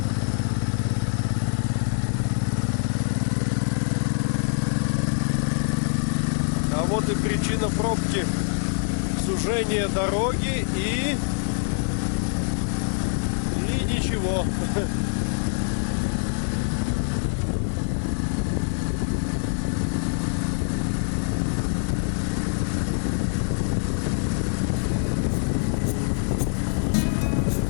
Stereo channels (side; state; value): right; silent; digital silence